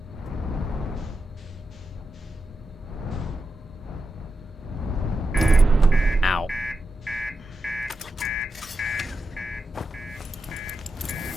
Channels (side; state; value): both; normal; correlation 0.88